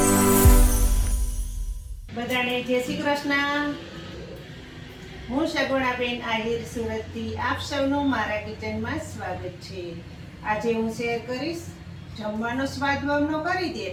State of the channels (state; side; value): identical; both; correlation 1.00